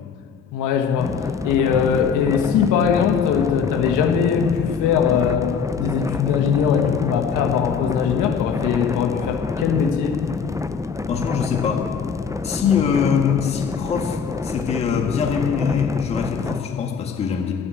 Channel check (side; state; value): right; quieter; 6.5 dB